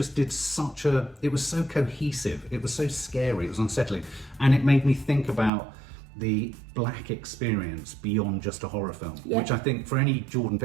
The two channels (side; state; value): left; drops out; at 5.5 s